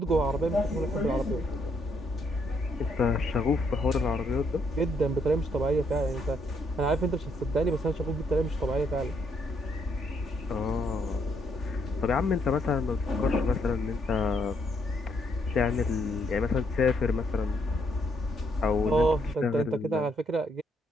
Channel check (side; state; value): both; normal; correlation 0.73